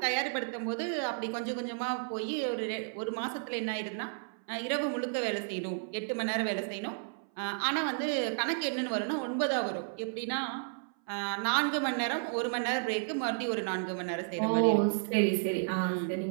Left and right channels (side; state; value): left; silent; 56 dB below the other